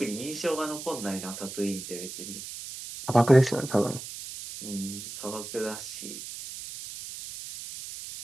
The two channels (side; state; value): right; noise; hiss, 10 dB below the sound